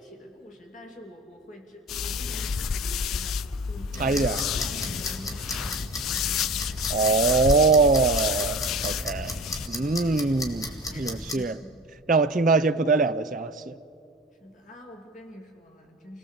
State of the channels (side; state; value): both; normal; correlation 0.35